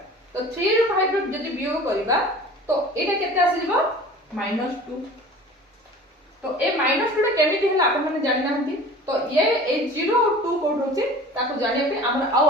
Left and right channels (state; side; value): normal; both; correlation 0.42